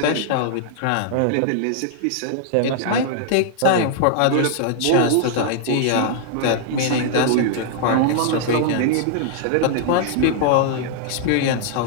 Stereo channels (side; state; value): both; different; correlation -0.01